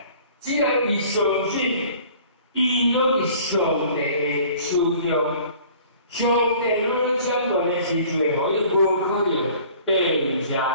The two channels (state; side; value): inverted; both; correlation -0.50